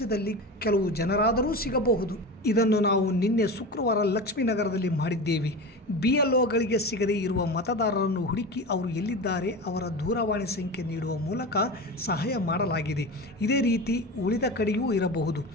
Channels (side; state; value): both; normal; correlation 0.27